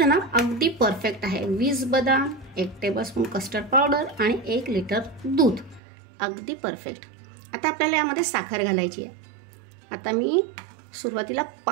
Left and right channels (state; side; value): drops out; left; at 5.8 s